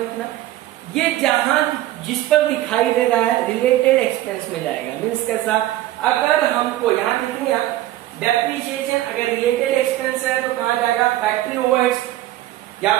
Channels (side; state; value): left; quieter; 14.9 dB